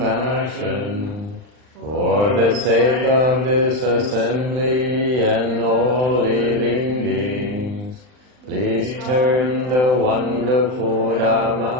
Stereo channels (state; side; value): late; left; 39 ms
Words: for the sake of this assembly and all living beings, please turn the wonderful